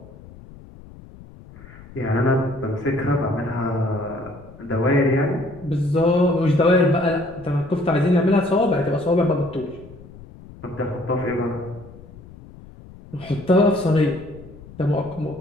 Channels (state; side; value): noise; left; rumble, 19 dB below the sound